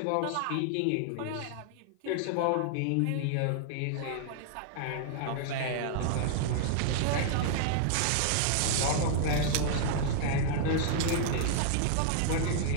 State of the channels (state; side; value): different; both; correlation -0.01